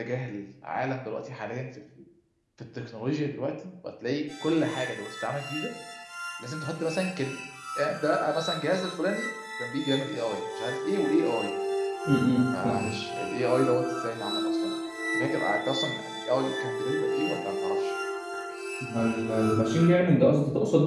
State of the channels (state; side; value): identical; both; correlation 1.00